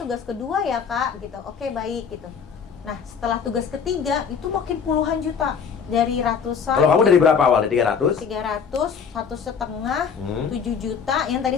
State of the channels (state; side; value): quieter; right; 6.6 dB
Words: kedua ya, Kak, gitu. Oke, baik gitu. Nah, setelah tugas ketiga itu makin puluhan juta dari ratusan. Kalau kamu dari berapa awalnya? 300? 300, 1,5, Hmm. 7 juta. Yang tadi